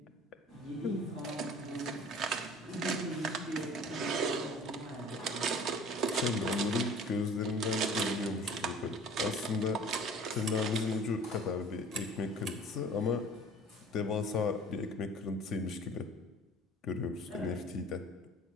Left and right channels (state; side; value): normal; both; correlation 0.46